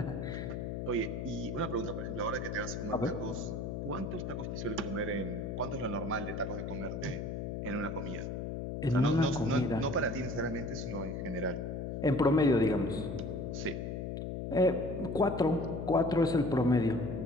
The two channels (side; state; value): left; noise; hum, 4 dB below the sound